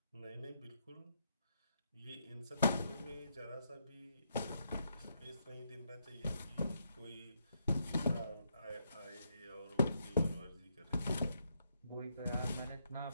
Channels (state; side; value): inverted; both; correlation -0.78